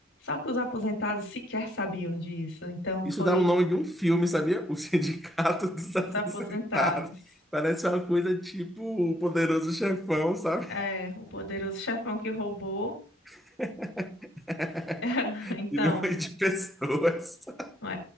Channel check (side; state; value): both; normal; correlation 0.69